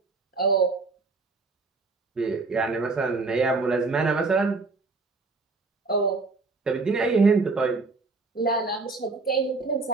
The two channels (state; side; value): quieter; left; 3.8 dB